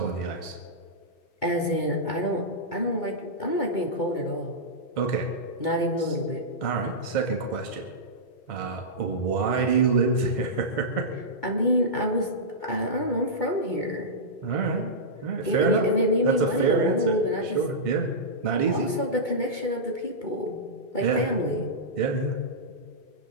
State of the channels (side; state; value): right; late; 2.2 ms